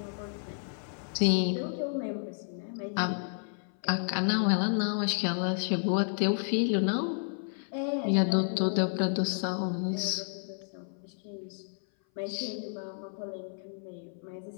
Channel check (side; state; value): right; silent; 57 dB below the other